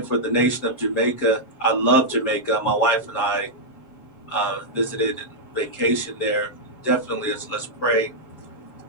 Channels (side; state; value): right; late; 7.5 ms